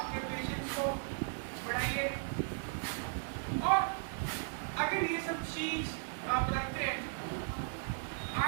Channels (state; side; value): silent; left; digital silence